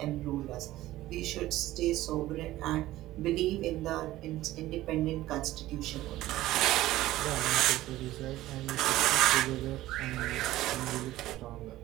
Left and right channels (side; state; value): left; quieter; 15.9 dB